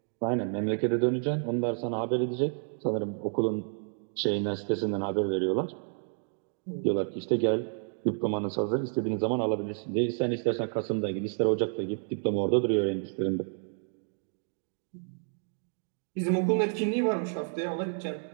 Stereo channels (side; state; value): left; silent; 58 dB below the other